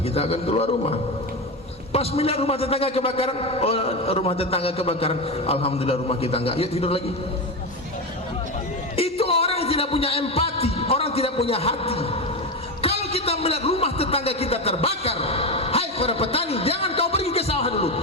kita akan keluar rumah. Pas melihat rumah tetangga kebakaran, rumah tetangga kebakaran, alhamdulillah rumah kita nggak, yuk tidur lagi. Itu orang yang tidak punya empati, orang tidak punya hati. Kita melihat rumah tetangga kita terbakar, hai para petani, jangan kau pergi ke sawah dulu,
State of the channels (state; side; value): normal; both; correlation 0.17